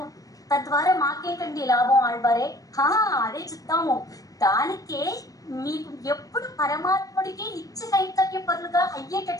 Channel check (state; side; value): late; right; 0.17 ms